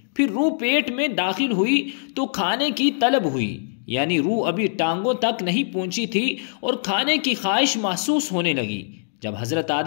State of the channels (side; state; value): right; silent; digital silence